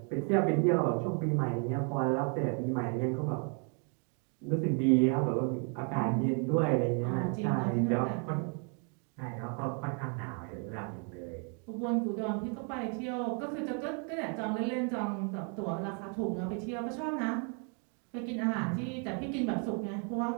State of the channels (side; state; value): left; quieter; 39.4 dB